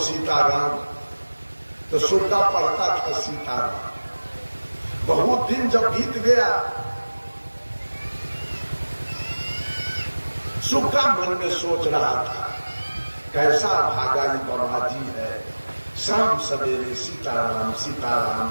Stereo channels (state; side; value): inverted; both; correlation -1.00